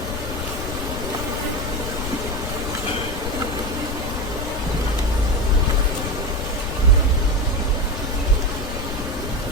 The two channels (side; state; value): left; noise; rumble, 5 dB below the sound